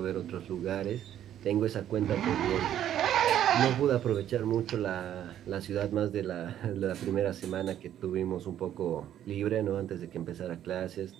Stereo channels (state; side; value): quieter; left; 11.0 dB